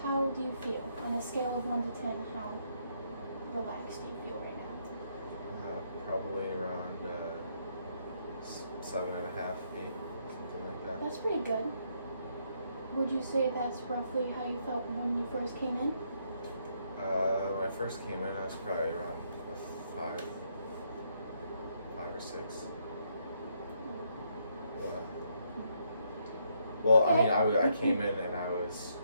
How do you feel? On a scale of 1 to 10, how relaxed do you feel right now? Probably around 7.5, 8, something like that. That's pretty good. Would you say that's roughly how you felt when you first came in? When I first came in, I was probably around 5 or 6. What? Well, Okay. I mean, I came in and I was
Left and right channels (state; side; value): inverted; both; correlation -0.74